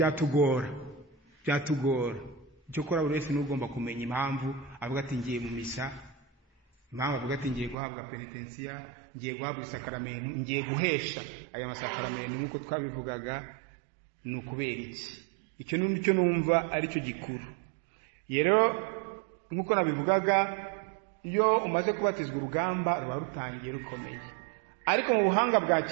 Icyo kora buri wese n'ugomba kumenya impamvu avuga ati ngiye mu misa, impamvu avuga ati ngiye guhabwa penitensiya, ngiye guhabwa isakaramento, ngiye guhesha aya masakaramento nk'uko twabivugaga. Ni ukubera iki? Icyo n'icyo numva ari cyo gikuru. Rero nk'uko nabivugaga, iyo umaze kubatizwa urugamba ruba rutangiye rukomeye. Ariko mu buhanga bwa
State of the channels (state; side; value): drops out; left; at 7.8 s